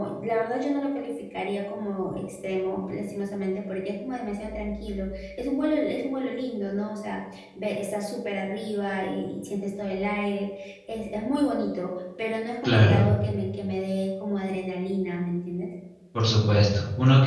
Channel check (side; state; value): both; identical; correlation 1.00